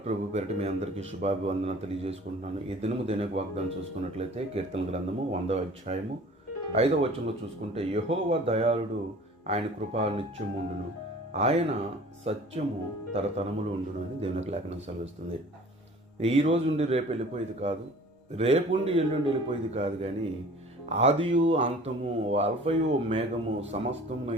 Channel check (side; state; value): both; normal; correlation 0.47